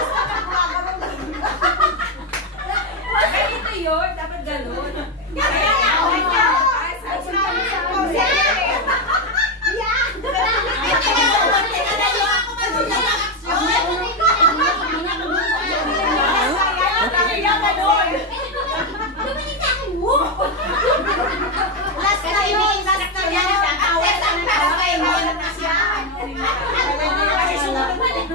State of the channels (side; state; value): both; normal; correlation 0.07